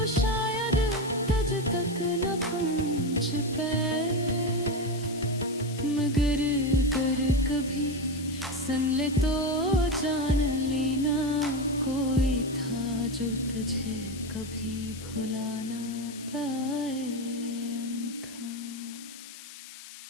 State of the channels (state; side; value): noise; left; hiss, 15 dB below the sound